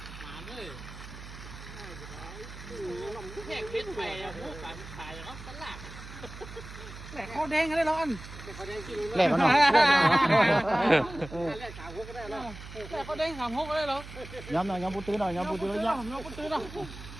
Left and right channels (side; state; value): right; noise; hum, 13 dB below the sound